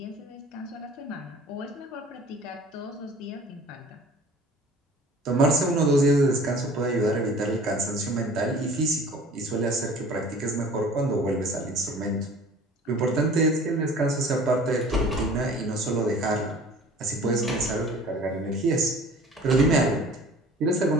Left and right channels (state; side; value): normal; both; correlation 0.47